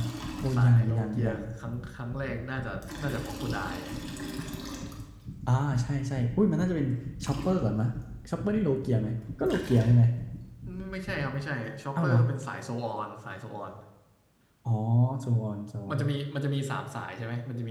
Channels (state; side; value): identical; both; correlation 1.00